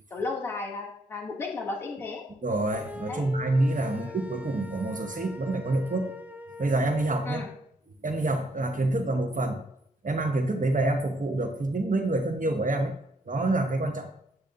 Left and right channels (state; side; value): normal; both; correlation 0.72